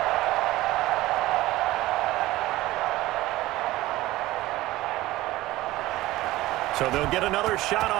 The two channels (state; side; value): quieter; left; 17.4 dB